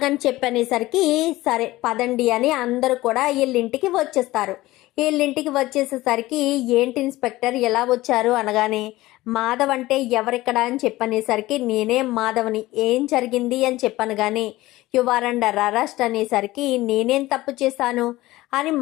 చెప్పనేసరికి సరే పదండి అని అందరూ కూడా వీళ్ళింటికి వచ్చేస్తారు. వీళ్ళింటికి వచ్చేసేసరికి ఏంటి ఇన్స్పెక్టర్ ఎలా వచ్చారు అనగానే మాధవ్ అంటే ఎవరిక్కడ అని చెప్పనేసరికి నేనే మాధవ్ని, ఏం జరిగింది అని చెప్పాను కానీ యు ఆర్ అండర్ అరెస్ట్ అనేసరికి నేనేం తప్పు చేశాను అని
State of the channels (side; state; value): right; quieter; 17.9 dB